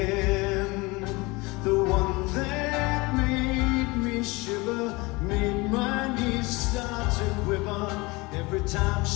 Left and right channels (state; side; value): quieter; right; 24.3 dB